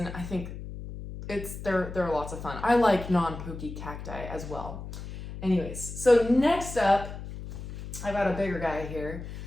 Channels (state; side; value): noise; left; hum, 10 dB below the sound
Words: I think they're lots of fun. I like non-pokey cacti as well. Anyways, so next up, I've got a bigger guy here.